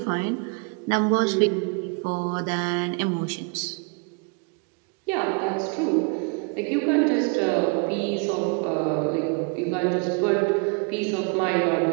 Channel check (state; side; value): quieter; left; 34.8 dB